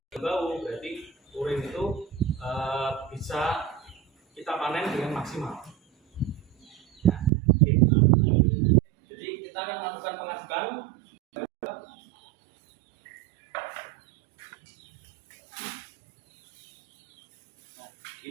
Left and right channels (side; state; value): left; drops out; at 7.3 s